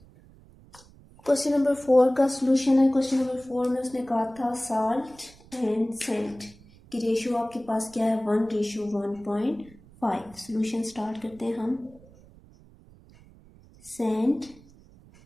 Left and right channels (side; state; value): right; noise; rumble, 25 dB below the sound